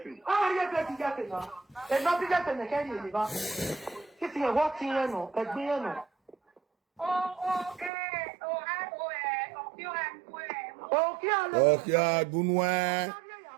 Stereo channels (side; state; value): left; drops out; at 7.9 s